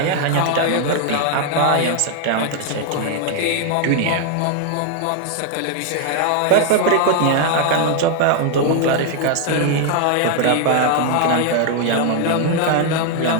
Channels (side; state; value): both; different; correlation 0.00